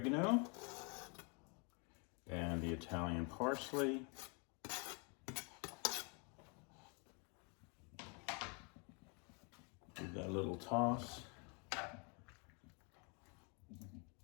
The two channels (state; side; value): quieter; right; 34.4 dB